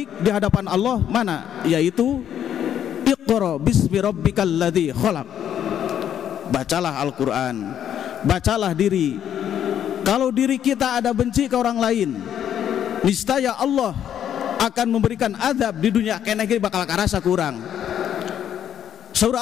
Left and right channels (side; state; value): right; quieter; 9.8 dB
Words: di hadapan Allah mana? Yaitu Iqra bismi rabbikal ladzi khalaq. Bacalah Al-Quran, bacalah diri. Kalau diri kita ada benci ke orang lain, niscaya Allah akan memberikan azab di dunia, kena bakal karasa kurang. Surah